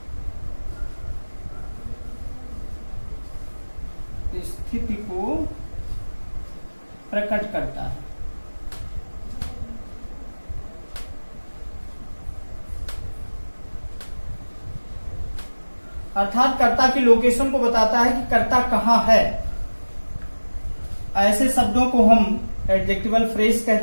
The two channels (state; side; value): inverted; both; correlation -1.00